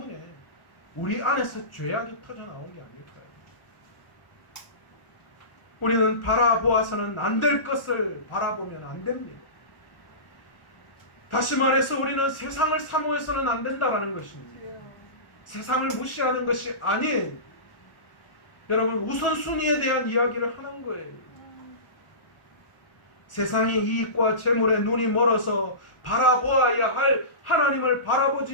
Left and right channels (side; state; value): right; late; 1.4 ms